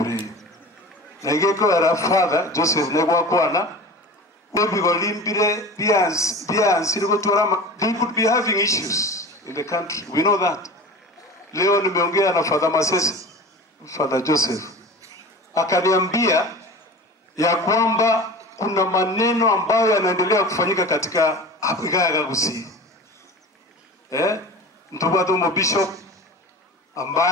Na igeko era father Joseph negwa kwana they could be having issues in the country. We know that. Leo nimeongea na Father Masese, Father Joseph. Akaniambia ya kwamba kuna maneno ambayo yanaendelea kufanyika katika Igaya Gusii. Mtubatu Bishop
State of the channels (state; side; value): normal; both; correlation 0.35